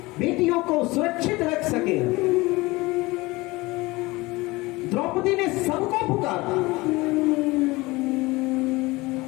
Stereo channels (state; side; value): quieter; right; 21.9 dB